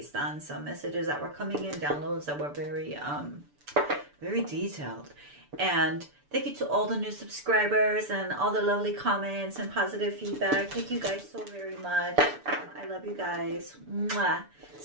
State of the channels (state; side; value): late; left; 6.9 ms